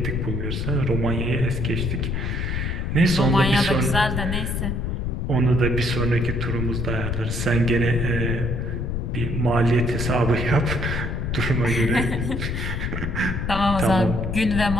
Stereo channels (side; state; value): left; noise; rumble, 1 dB below the sound